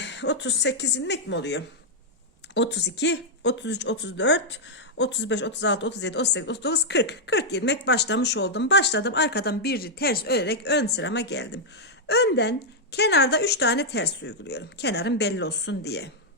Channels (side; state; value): both; normal; correlation -0.03